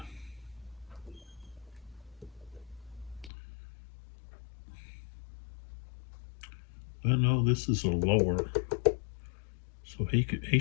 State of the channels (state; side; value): drops out; right; at 3.3 s